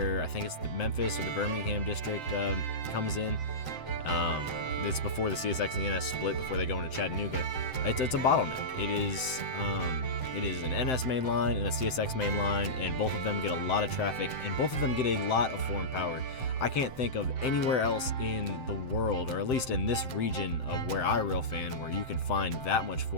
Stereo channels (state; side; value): late; right; 7.8 ms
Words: I think it's the Memphis or the Birmingham district comes in. It's before the CSX and the NS split, before they go into Chattanooga. It's a bottleneck. It is an NS main line and a CSX main line, and both of them get a lot of traffic, and both of them get a lot of foreign power. I can't think of anywhere else in the world, or at least in this region of where I rail fan, where you can find that much